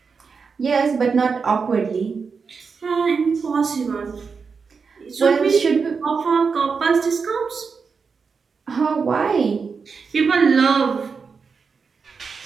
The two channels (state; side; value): quieter; left; 5.3 dB